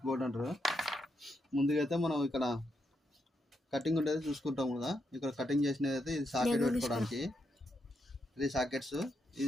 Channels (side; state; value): both; normal; correlation 0.81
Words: బోర్డు అంటారు. ముందుగా అయితే మనం ఇక్కడ కటింగ్ ఉండేది చూసుకుంటాం కదా. ఇక్కడ కటింగ్ చేసినది అయితే ఇది సాకెట్ పెట్టుకోవడానికి 3 సాకెట్స్.